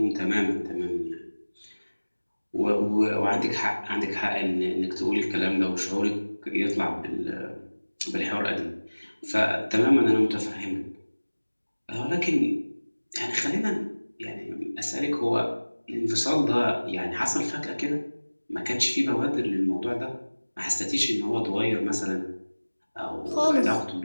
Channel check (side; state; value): both; inverted; correlation -1.00